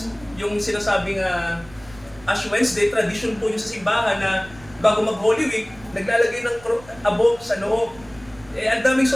yung sinasabing Ash Wednesday, tradition po yung sa simbahan na bago mag-Holy Week, naglalagay ng abo sa noo. Ang daming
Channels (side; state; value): right; noise; rumble, 22 dB below the sound